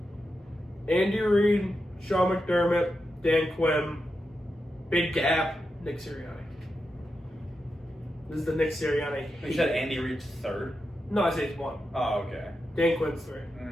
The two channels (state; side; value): normal; both; correlation 0.88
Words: Andy Reid, Sean McDermott, Dan Quinn, big gap, Nick Sirianni. This is the Nick Sirianni. You said Andy Reid's 3rd? No, I say it's 1. Oh, okay. Dan Quinn's 3.